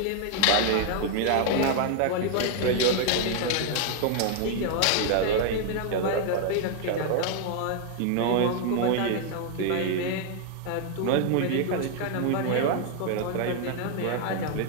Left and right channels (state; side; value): different; both; correlation 0.00